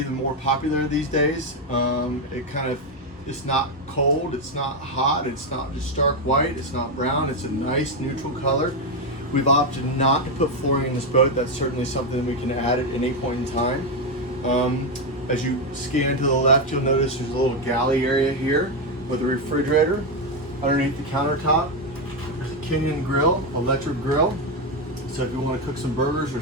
the more popular these days. It's not cold, it's not hot, it's not just stark white, it's not brown, it's a nice neutral color. We've opted not to put flooring in this boat. That's certainly something we can add at any point in time. As you scan to the left, you'll notice there's a little galley area here with a refrigerator. Underneath the countertop, there's a Kenyan grill, electric grill. So if you want to cook some burgers or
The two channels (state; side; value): normal; both; correlation 0.07